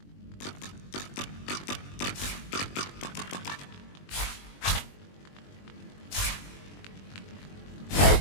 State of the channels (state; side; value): late; right; 21 ms